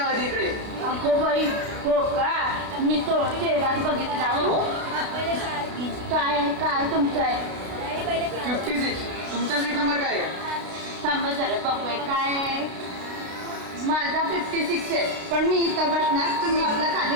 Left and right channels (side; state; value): left; late; 32 ms